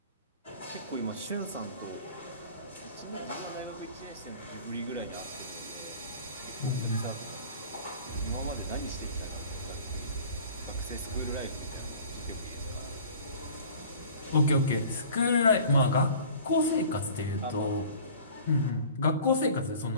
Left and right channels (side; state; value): both; inverted; correlation -0.45